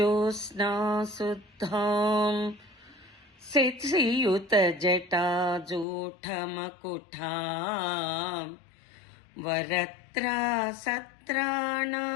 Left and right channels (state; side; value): drops out; right; at 5.9 s